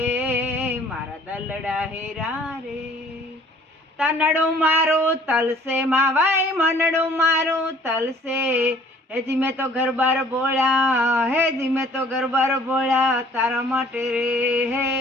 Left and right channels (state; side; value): normal; both; correlation 0.55